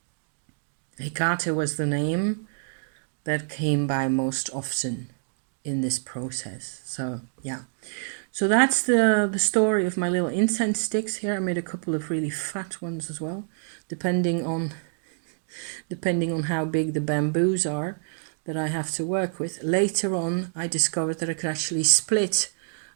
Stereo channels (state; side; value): silent; left; digital silence